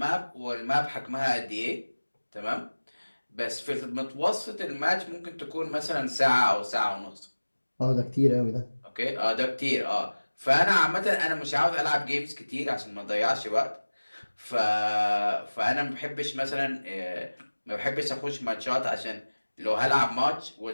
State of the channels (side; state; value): both; inverted; correlation -1.00